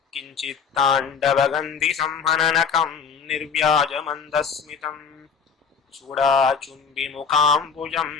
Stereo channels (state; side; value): quieter; right; 6.1 dB